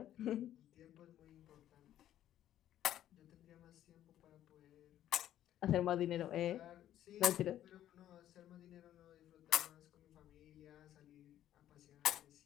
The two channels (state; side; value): quieter; right; 12.0 dB